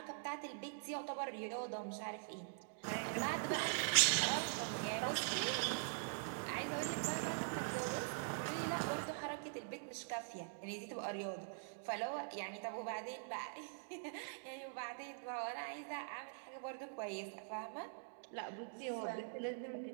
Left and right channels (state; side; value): silent; left; digital silence